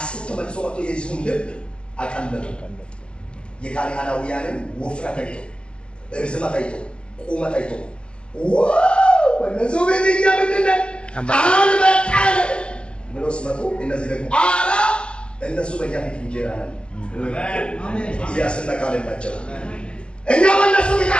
ተመልሶ መጥቶ የሕዝቡን ልብ አቀለጡ። የካናናውያንን ውፍረት አይቶ፣ ርዝመት አይቶ፣ ቁመት አይቶ እነዚህ ቤትኛ ምንድነው አልበቃል ብሎ ሲመጡ እነዚህ ደግሞ አራ እነሱ በእኛ ፊት እንጀራ ነን። ኢያስና ካሌብ ናቸው። እኛ በእነሱ ፊት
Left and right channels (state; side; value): late; right; 0.055 ms